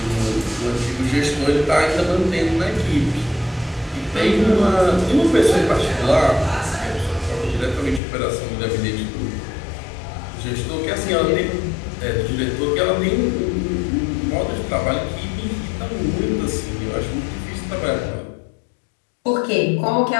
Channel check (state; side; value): drops out; right; at 8.0 s